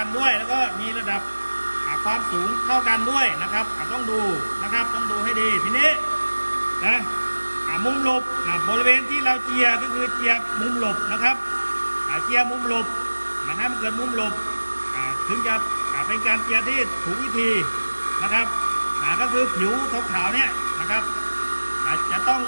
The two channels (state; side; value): inverted; both; correlation -1.00